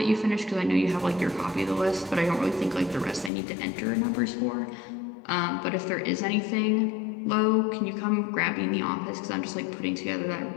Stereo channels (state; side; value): drops out; right; at 3.3 s